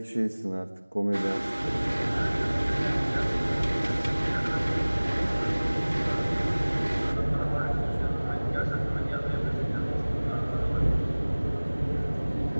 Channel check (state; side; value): inverted; both; correlation -1.00